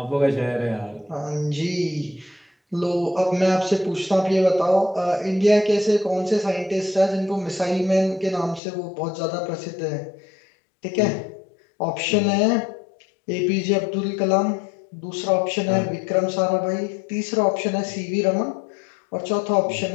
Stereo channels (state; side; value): drops out; right; at 8.6 s